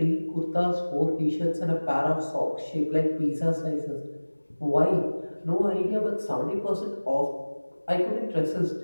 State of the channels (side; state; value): both; inverted; correlation -1.00